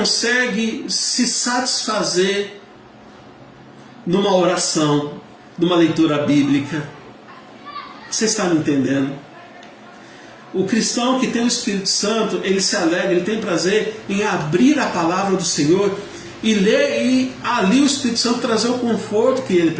se satisfazer numa oração, numa leitura bíblica. Você está me entendendo? O cristão que tem o Espírito Santo, ele se alegra, ele tem prazer em abrir a palavra do Senhor e ler, e ali o Espírito Santo trazer o conforto que ele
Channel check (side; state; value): both; identical; correlation 1.00